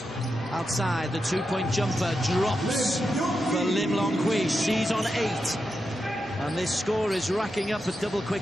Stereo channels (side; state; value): both; normal; correlation 0.87